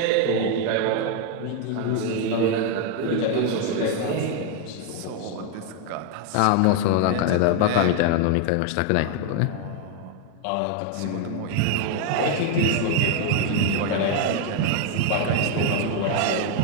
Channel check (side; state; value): both; different; correlation 0.00